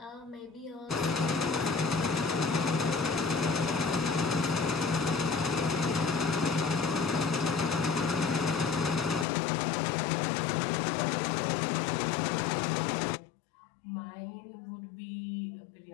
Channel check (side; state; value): right; drops out; at 9.2 s